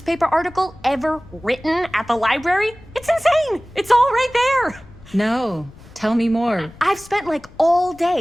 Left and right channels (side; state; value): left; noise; rumble, 23 dB below the sound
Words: article ever written at the library? It's insane. It's all right there. No, tell me more. I've spent like all